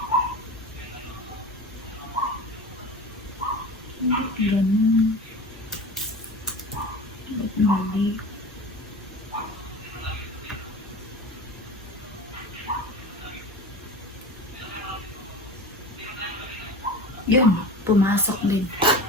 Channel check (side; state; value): both; normal; correlation 0.32